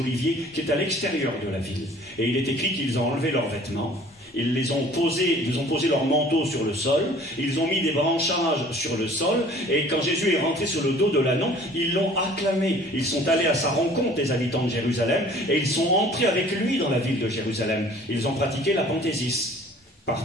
qui est à l'extérieur de la ville. Et il est écrit qu'ils ont enlevé leurs vêtements. Ils ont posé leur manteau sur le sol, ils ont mis des branchages sur le sol, et quand Jésus est rentré sur le dos de l'ânon, ils l'ont acclamé. Ils sont allés à sa rencontre, les habitants de Jérusalem, et ils sont entrés avec lui dans la ville de Jérusalem. Ils ont pratiqué l'apanthésis,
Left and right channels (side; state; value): both; normal; correlation 0.51